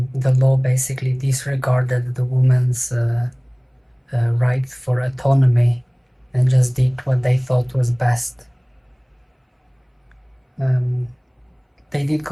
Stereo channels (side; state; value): both; identical; correlation 1.00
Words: law basically disregarded the woman's right for autonomy and just did what they thought was best. They did